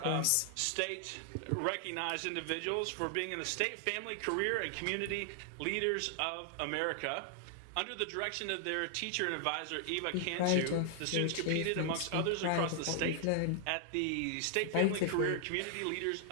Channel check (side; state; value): both; different; correlation 0.00